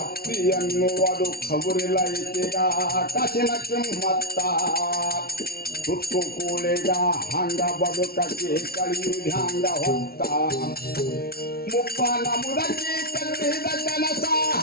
ಅತ್ತಿ ಅನ್ನುವುದು ಖಬರಿಲ್ಲ ಈಕೆಗ ಕಾಸಿನ ಕಿಮ್ಮತ್ತ. ತುತ್ತು ಕೂಳಿಗ ಹಂಗ ಬದುಕಿ ಕಳಿಯುವುದು ಹಂಗ ಹೊತ್ತ. ಮುಪ್ಪನ ಮುದಕಿ ಕಟ್ಟಿದ ಕನಸ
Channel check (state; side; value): late; right; 0.44 ms